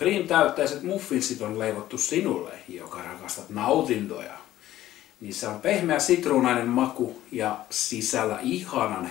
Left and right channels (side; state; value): right; quieter; 13.9 dB